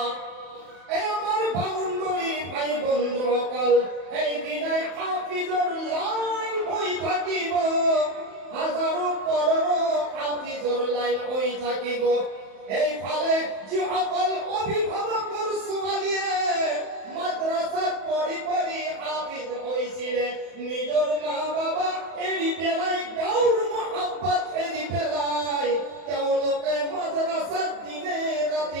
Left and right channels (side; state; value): left; late; 31 ms